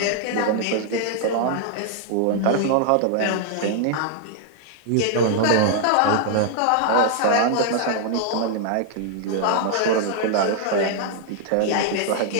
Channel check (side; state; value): both; different; correlation -0.01